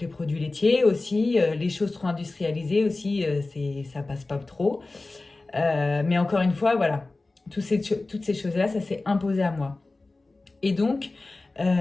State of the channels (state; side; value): quieter; right; 3.2 dB